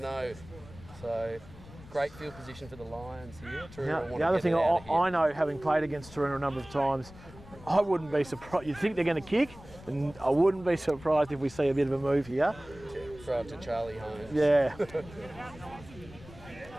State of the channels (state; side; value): noise; left; rumble, 19 dB below the sound